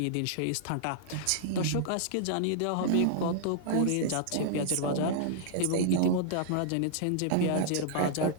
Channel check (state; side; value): different; both; correlation -0.01